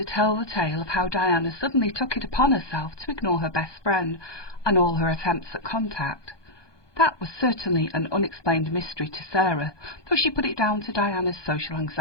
tell the tale of how Diana suddenly took it upon herself to ignore her best friend and all her attempts at contact. That was certainly an unexplained mystery to Sarah, though she put it down to Diana's social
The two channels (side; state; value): right; late; 1.2 ms